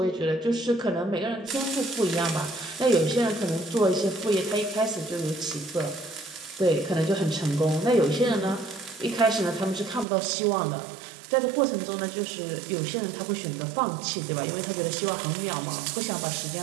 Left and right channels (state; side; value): drops out; left; at 10.1 s